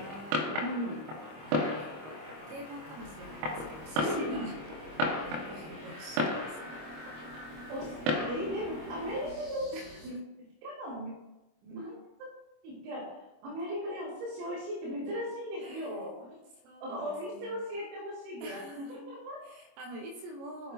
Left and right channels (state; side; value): late; left; 25 ms